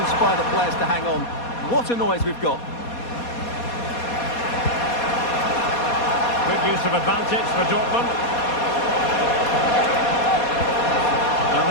the players to hang on. What a noise we've got. Good use of advantage for Dortmund. And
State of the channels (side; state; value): right; late; 4.2 ms